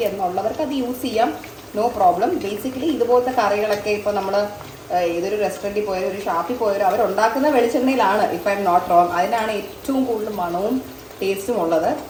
എന്നുള്ളവർക്ക് അത് യൂസ് ചെയ്യാം. No problem. ബേസിക്കലി ഇതുപോലത്തെ കറികളൊക്കെ ഇപ്പോൾ നമ്മൾ ഏതൊരു റെസ്റ്റോറൻറ്റിൽ പോയാലും ഒരു ഷാപ്പിൽ പോയാലും അവരുണ്ടാക്കുന്ന വെളിച്ചെണ്ണയിലാണ്, if I'm not wrong. അതിനാണ് ഏറ്റവും കൂടുതൽ മണവും ടേസ്റ്റും ഉള്ളത്.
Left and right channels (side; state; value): both; identical; correlation 1.00